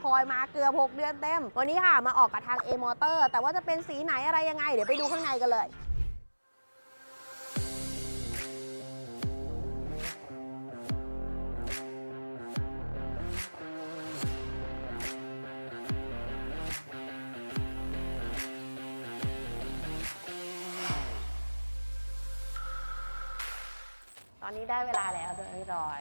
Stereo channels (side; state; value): both; inverted; correlation -1.00